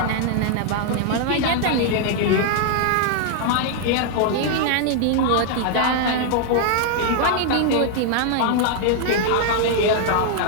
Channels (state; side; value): different; both; correlation 0.00